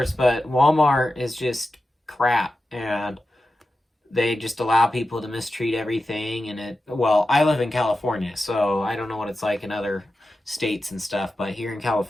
but Walmart is just crap, and they just allow people to mistreat everything. And well, I live in California, so I don't know what it's like in other states and stuff, but here in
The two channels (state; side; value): normal; both; correlation 0.92